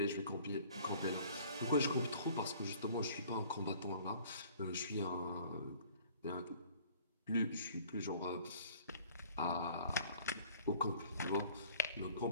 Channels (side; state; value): both; inverted; correlation -0.52